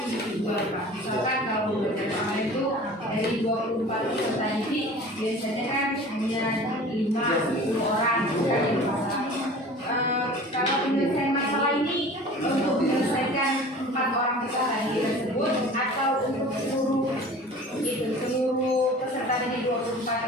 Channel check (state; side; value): normal; both; correlation 0.42